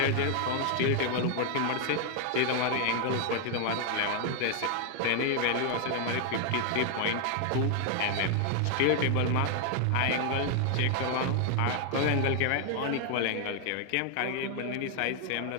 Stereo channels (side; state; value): both; different; correlation 0.00